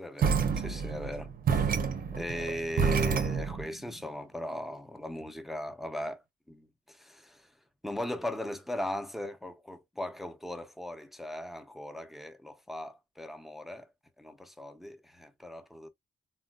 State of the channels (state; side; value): quieter; left; 3.5 dB